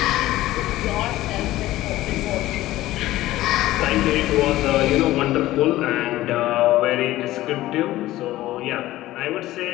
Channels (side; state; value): right; quieter; 16.1 dB